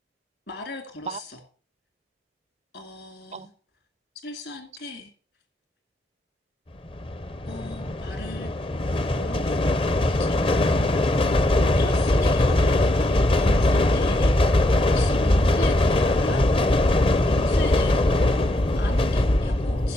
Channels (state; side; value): normal; both; correlation 0.77